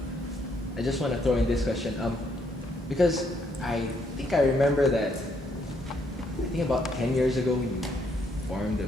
I just want to throw in this question, because I think I remember that, I think about 10 years ago you formed a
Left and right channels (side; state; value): both; normal; correlation 0.72